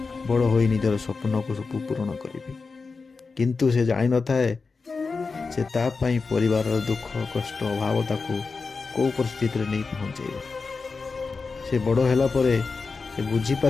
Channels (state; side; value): quieter; right; 4.4 dB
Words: बड़ हो निजर स्वप्न को सब पूरण करी, किंतु से जान न थाए से तापाई परिवार दुख कष्ट अभाव ताकू कौ परिस्थिति नहीं पहुँचे। से बड़ होला परे से बुझी